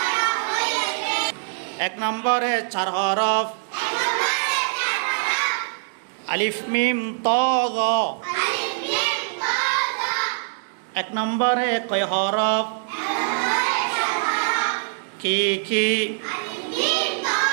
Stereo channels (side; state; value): left; silent; 61 dB below the other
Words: 1 নম্বরে 4 হরফ আলিফ মিম ত জ। 1 নম্বরে কয় হরফ কি কি।